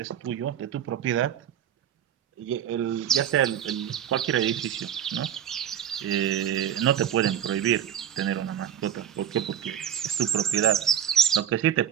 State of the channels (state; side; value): quieter; left; 9.5 dB